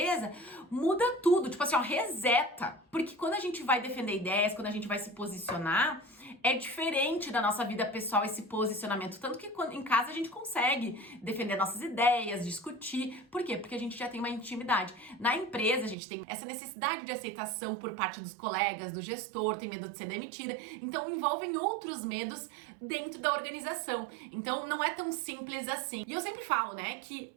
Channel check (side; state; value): left; drops out; at 16.0 s